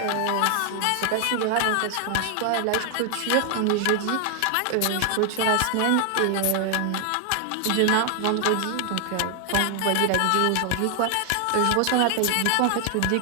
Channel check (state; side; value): different; both; correlation 0.00